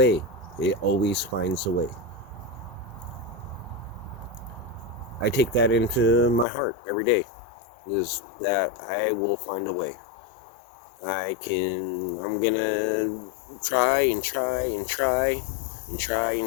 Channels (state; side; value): drops out; right; at 6.5 s